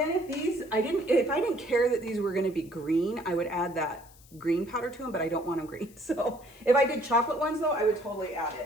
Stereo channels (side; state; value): left; noise; hiss, 25 dB below the sound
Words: if I didn't care that these were gonna be green, I would add that green powder to them, but I don't want them green. So if I did chocolate ones though, I would totally add